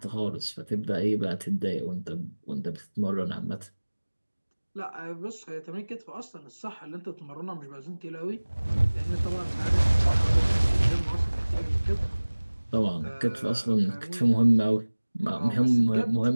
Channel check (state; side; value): inverted; both; correlation -1.00